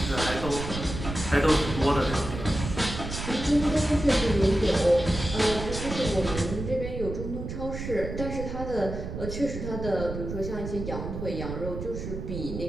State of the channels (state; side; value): noise; right; rumble, 7 dB below the sound